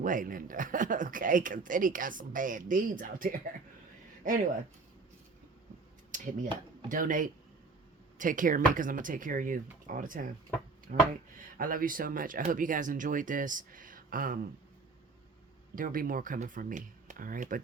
weigh, Linda. Okay? Because Diddy got some bad deeds out there. Anyway, hit me up. Donate. Take care of me because I'm going to take care of you all the time. All right? I love you so much. I hope you guys enjoyed this. There will be more coming from me. All right? But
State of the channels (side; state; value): left; quieter; 4.1 dB